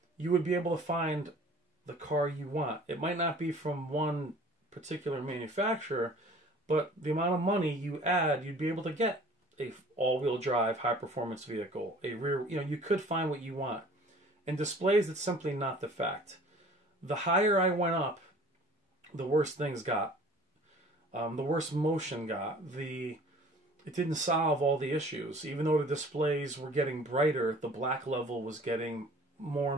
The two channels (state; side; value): normal; both; correlation 0.49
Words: you would be able to find the car you want. It might not be from one particular manufacturer, but the amount of money you add, you'd be able to get a all-wheel drive, high-performance vehicle, a rear, you could find what you want. In displays, it's simply not the fact. The higher I went up, the worse things got. The worse motion got. It didn't solve all the issues. Even though the displays were getting brighter, the black level was getting more